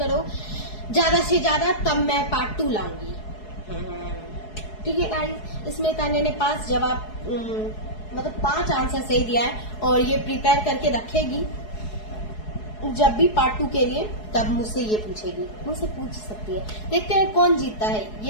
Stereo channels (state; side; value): late; right; 4.7 ms